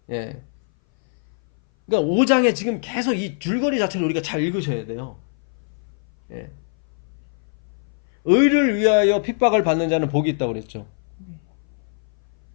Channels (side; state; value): right; silent; 59 dB below the other